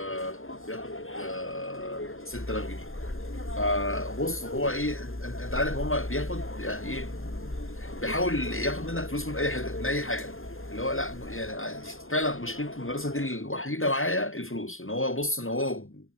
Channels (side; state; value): right; late; 0.60 ms